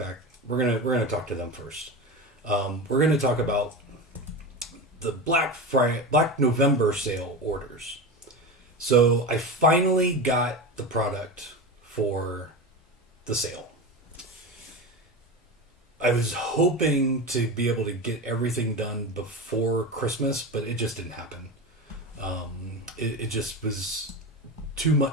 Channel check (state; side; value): normal; both; correlation 0.24